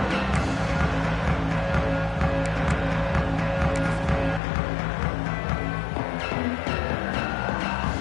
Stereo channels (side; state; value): right; drops out; at 4.4 s